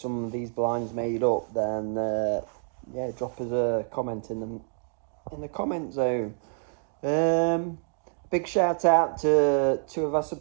of these blinds made up, then yeah, drop us a comment in the comment zone. Big shout out to 2 of our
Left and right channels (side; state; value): left; silent; 59 dB below the other